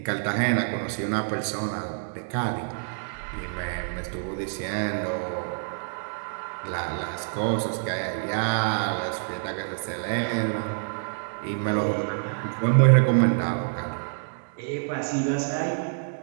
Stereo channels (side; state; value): left; silent; digital silence